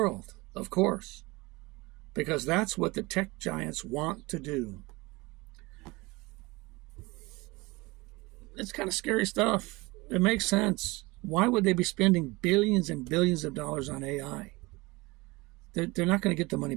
of course, because that's what the tech giants want to do. It's kind of scary stuff. It makes sense. Why would they be spending billions and billions of dollars on AI? They're not going to get the money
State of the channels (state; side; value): quieter; left; 23.3 dB